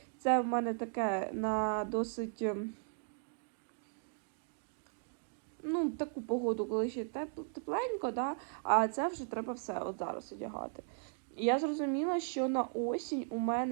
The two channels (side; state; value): left; silent; 53 dB below the other